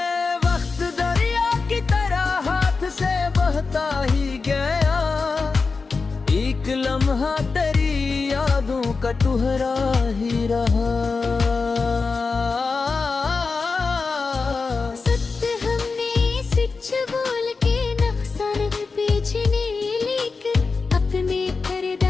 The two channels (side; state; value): right; quieter; 4.4 dB